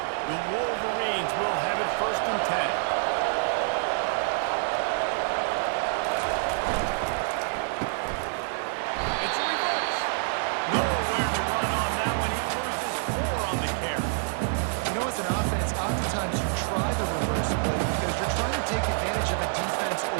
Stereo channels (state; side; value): silent; left; digital silence